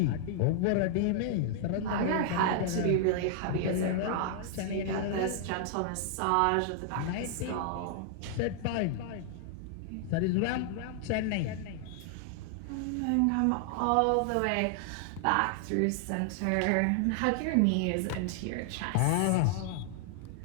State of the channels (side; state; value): both; different; correlation -0.01